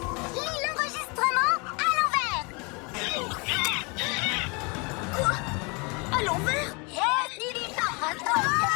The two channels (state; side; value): quieter; right; 30.4 dB